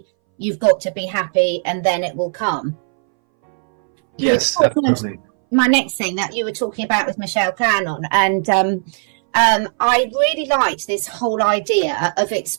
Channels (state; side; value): silent; left; 64 dB below the other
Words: You've got to be happy and then it will come. Yes, absolutely. My next thing that you were talking about with Michelle Cannon, and I really liked this whole idea of